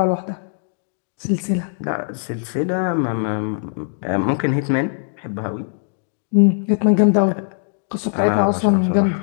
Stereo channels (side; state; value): right; silent; digital silence